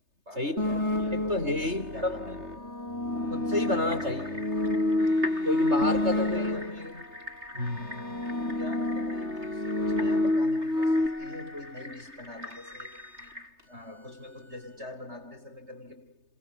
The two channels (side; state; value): left; late; 3.3 ms